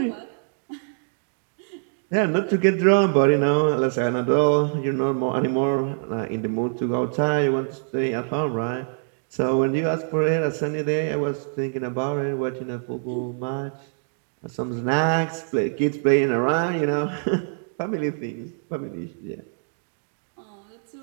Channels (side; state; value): left; silent; digital silence